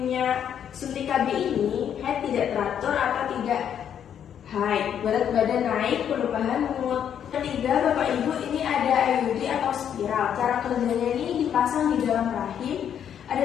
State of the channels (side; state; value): right; quieter; 9.0 dB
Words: suntik KB ini, haid tidak teratur atau tidak haid, berat badan naik, perubahan mood. Ketiga, Bapak Ibu, ini ada IUD atau spiral. Cara kerjanya ini dipasang di dalam rahim.